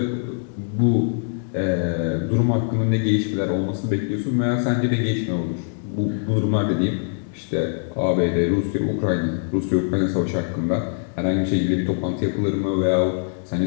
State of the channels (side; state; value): right; silent; digital silence